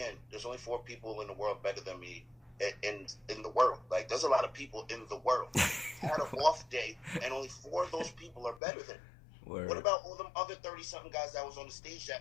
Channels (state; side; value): drops out; right; at 8.6 s